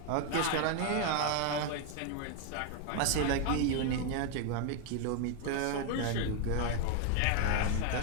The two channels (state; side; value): different; both; correlation 0.01